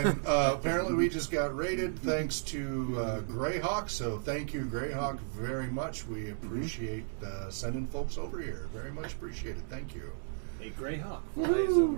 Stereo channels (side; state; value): left; silent; digital silence